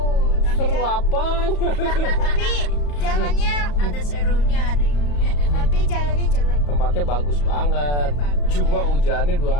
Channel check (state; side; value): late; right; 34 ms